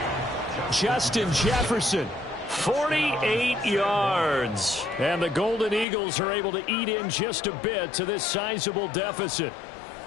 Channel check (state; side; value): drops out; right; at 5.9 s